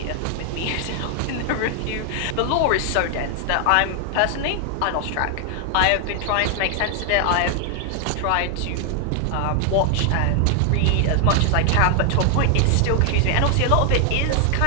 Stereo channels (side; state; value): both; different; correlation 0.00